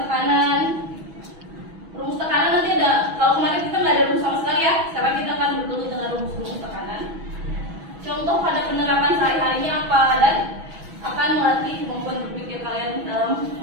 Rumus tekanan nanti ada. Kalau kemarin kita nggak ada rumus sama sekali ya. Sekarang kita akan bergelut dengan rumus-rumus tekanan. Contoh pada penerapan sehari-harinya apa dan akan melatih kemampuan berpikir kalian dalam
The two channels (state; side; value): late; left; 6.1 ms